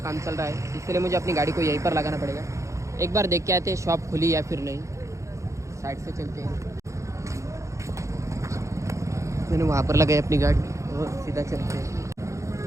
चल रहा है, इसलिए मुझे अपनी गाड़ी को यहीं पर लगाना पड़ेगा। एक बार देख के आते हैं शॉप खुली या फिर नहीं। साइड से चलते हैं, मैंने वहाँ पर लगाई अपनी गाड़ी और सीधा चलते हैं।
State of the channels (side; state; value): left; late; 0.15 ms